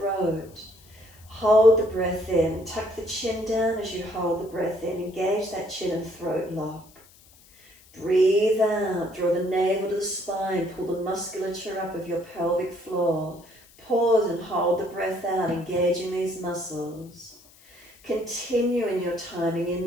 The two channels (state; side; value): noise; left; hiss, 26 dB below the sound